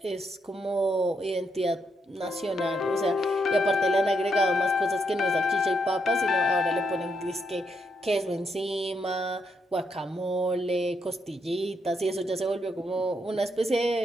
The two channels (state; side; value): normal; both; correlation 0.79